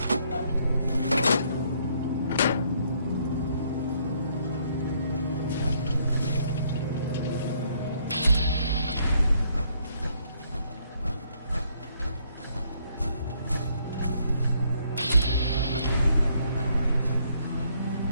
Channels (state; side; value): inverted; both; correlation -0.69